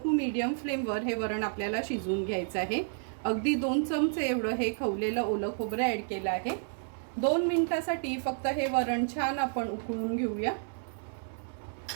टू मीडियम फ्लेमवर हे वरण आपल्याला शिजवून घ्यायचं आहे. अगदी 2 चमचे एवढं हे खवलेलं ओलं खोबरं ॲड केलं आहे. 2 मिनिटासाठी फक्त हे वरण छान आपण उकळून घेऊया.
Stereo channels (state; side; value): silent; left; 57 dB below the other